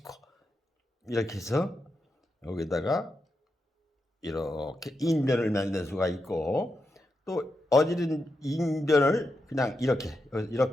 이렇게 해서 여기다가 이렇게 인변을 만들 수가 있고 또 어지른 인변을 그냥 이렇게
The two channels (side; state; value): both; normal; correlation 0.86